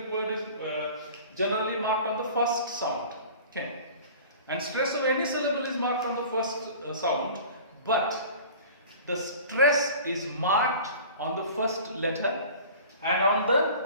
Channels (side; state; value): both; inverted; correlation -0.41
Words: word is generally marked on the first sound. Okay. And stress of any syllable is marked on the first sound, but the stress is marked on the first letter and on the